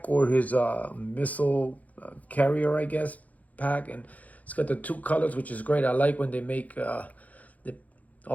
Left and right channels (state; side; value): late; right; 0.075 ms